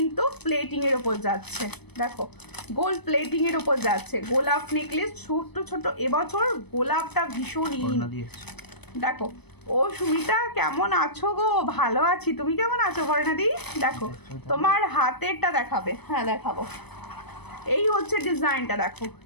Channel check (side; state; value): right; late; 0.98 ms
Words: প্লেটিং এর ওপর যাচ্ছে, দেখো গোল্ড প্লেটিং এর ওপর যাচ্ছে গোলাপ নেকলেস, ছোট ছোট। এবছর গোলাপটা ভীষণ ইন। দেখো ও সুমিতা কেমন আছো গো? ভালো আছি, তুমি কেমন আছো বর্ণাদি? দেখো তোমার হাতেরটা দেখাবে, হ্যাঁ দেখাবো। এই হচ্ছে ডিজাইনটা, দেখো